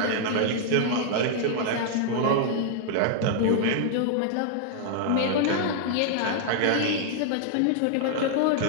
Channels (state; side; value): different; both; correlation 0.00